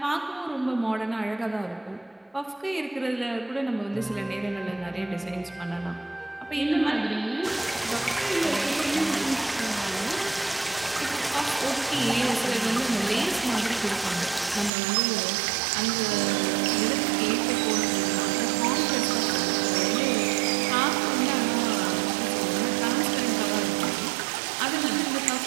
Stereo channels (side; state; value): left; drops out; at 14.7 s